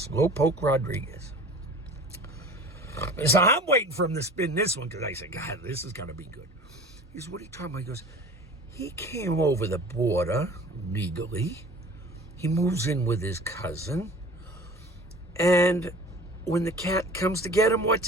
Rodriguez. So I'm waiting for him to spin this one, because I said, God, this is going to be good. He says, what are you talking about? He goes, he came over the border legally. He moves in with his cousin. And when the cat comes to get him, what's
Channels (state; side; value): normal; both; correlation 0.42